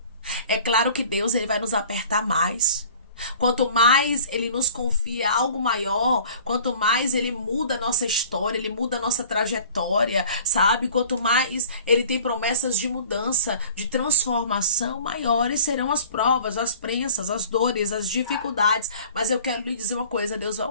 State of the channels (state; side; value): inverted; both; correlation -0.47